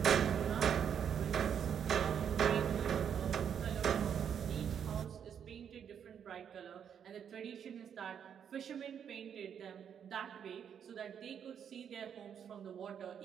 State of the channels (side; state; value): left; quieter; 8.2 dB